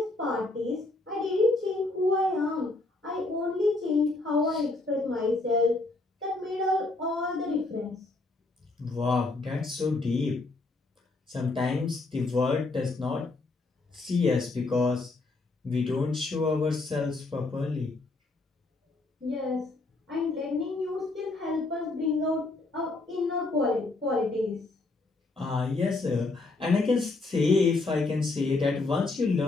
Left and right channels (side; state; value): right; quieter; 3.3 dB